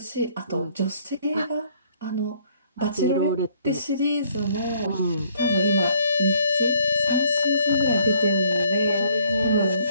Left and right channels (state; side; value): inverted; both; correlation -0.63